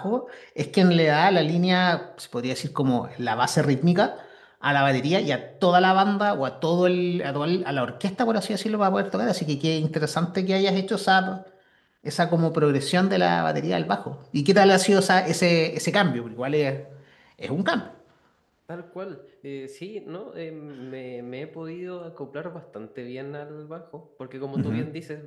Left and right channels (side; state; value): both; identical; correlation 1.00